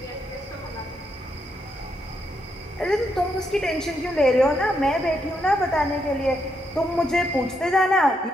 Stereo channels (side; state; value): both; normal; correlation 0.79